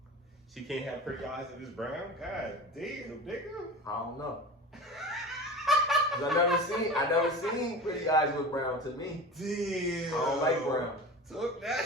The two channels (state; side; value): normal; both; correlation 0.32